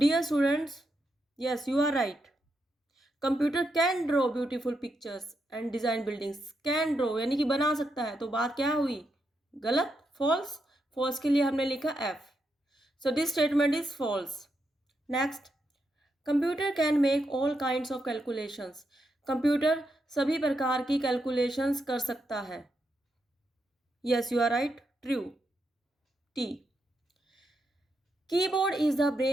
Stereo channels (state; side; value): normal; both; correlation 0.83